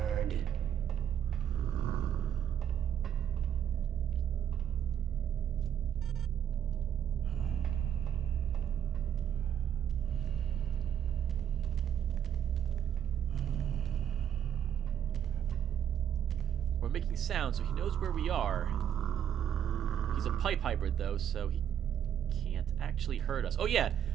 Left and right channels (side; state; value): left; quieter; 9.3 dB